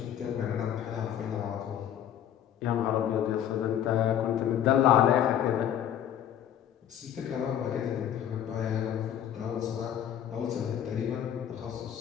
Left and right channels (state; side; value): quieter; right; 10.2 dB